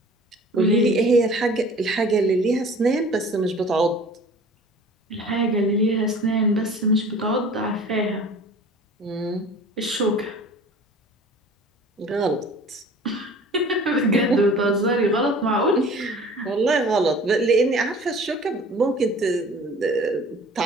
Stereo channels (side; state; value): both; normal; correlation 0.45